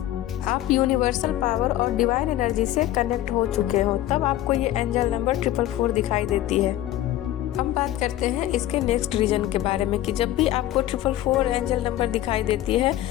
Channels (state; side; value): quieter; right; 13.8 dB